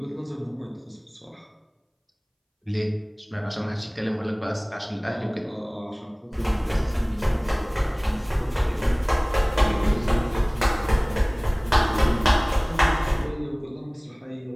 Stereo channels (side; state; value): both; identical; correlation 1.00